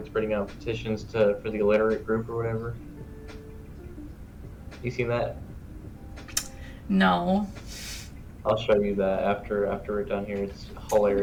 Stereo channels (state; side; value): identical; both; correlation 1.00